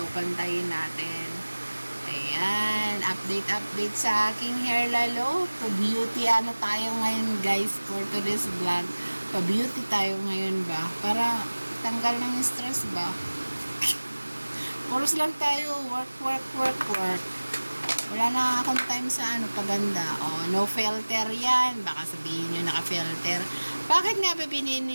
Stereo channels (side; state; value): both; inverted; correlation -1.00